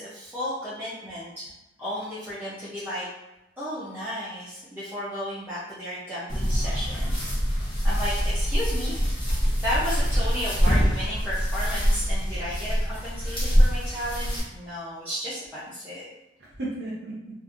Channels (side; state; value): both; normal; correlation 0.81